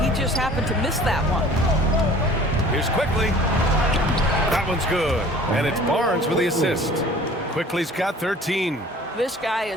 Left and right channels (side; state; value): both; normal; correlation 0.48